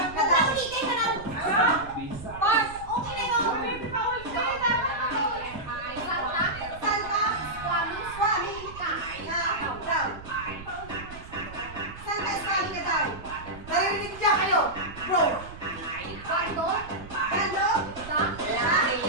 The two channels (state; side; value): noise; right; rumble, 16 dB below the sound